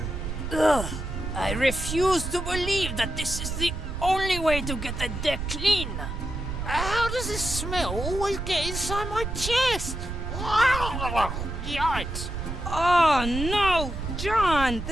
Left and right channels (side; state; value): right; noise; rumble, 5 dB below the sound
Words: Ugh, I refuse to believe that this is the only way to get the deck clean. How does this smell always get inside my chest? Yikes. Oh no, John!